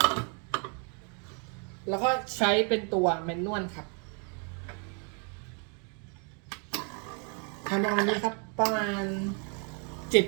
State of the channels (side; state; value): left; quieter; 38.3 dB